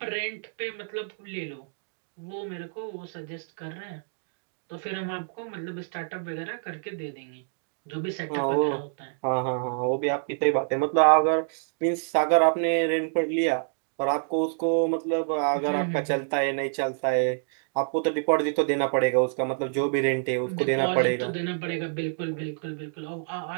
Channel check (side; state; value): left; silent; digital silence